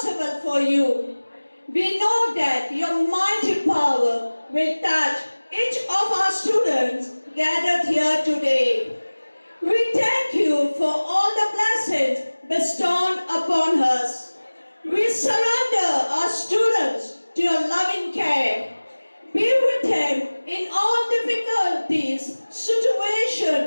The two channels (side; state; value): both; inverted; correlation -1.00